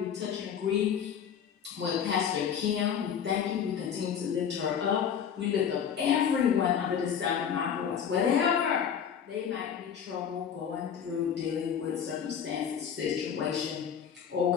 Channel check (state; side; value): quieter; right; 8.0 dB